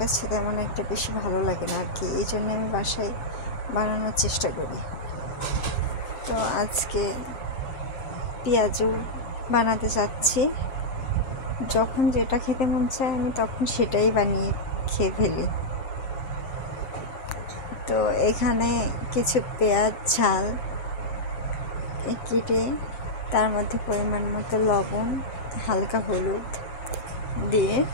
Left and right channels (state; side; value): late; right; 7.7 ms